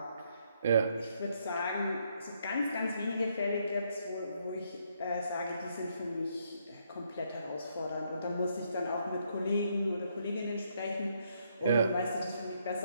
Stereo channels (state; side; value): inverted; both; correlation -0.74